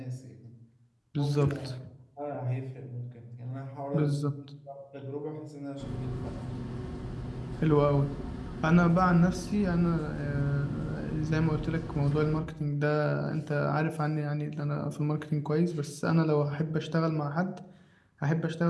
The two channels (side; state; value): both; identical; correlation 1.00